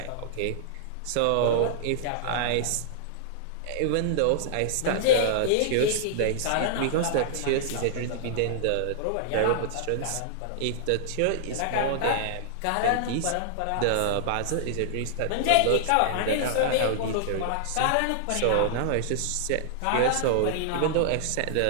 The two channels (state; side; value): different; both; correlation -0.01